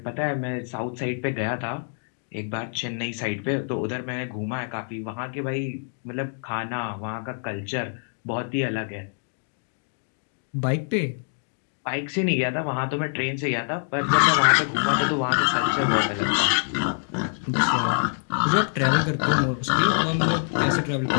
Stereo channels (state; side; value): silent; right; digital silence